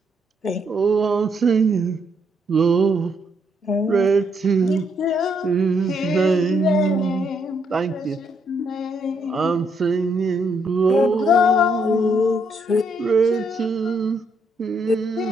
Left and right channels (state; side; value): normal; both; correlation 0.74